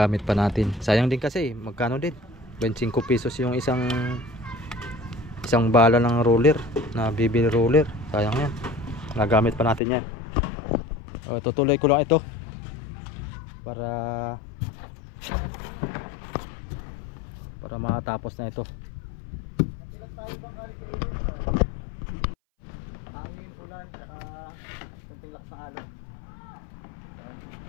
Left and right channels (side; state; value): right; drops out; at 9.8 s